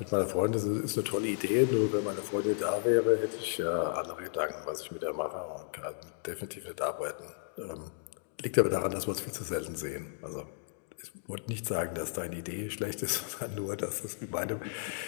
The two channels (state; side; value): silent; right; digital silence